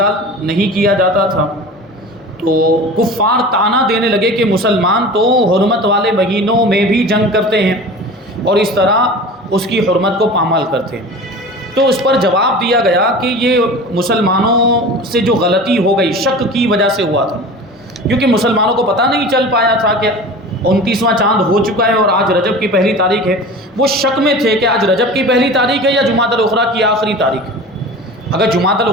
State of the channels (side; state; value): both; normal; correlation 0.36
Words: نہیں کیا جاتا تھا۔ تو کفار طعنہ دینے لگے کہ مسلمان تو حرمت والے مہینوں میں بھی جنگ کرتے ہیں اور اس طرح اس کی حرمت کو پامال کرتے ہیں۔ تو اس پر جواب دیا گیا کہ یہ مسلمانوں سے جو غلطی ہو گئی شک کی وجہ سے ہوا تھا، کیونکہ مسلمانوں کو پتہ نہیں چل پایا تھا کہ 29واں چاند ہو چکا ہے اور آج رجب کی پہلی تاریخ ہے۔ وہ شک میں تھے کہ آج رجب کی پہلی تاریخ ہے یا جمادی الاخری کی آخری تاریخ ہے۔ اگر جمادی